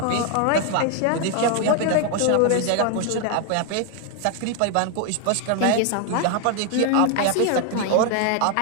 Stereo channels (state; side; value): different; both; correlation 0.00